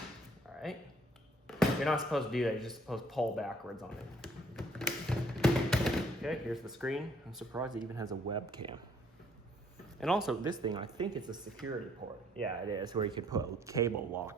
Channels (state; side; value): normal; both; correlation 0.64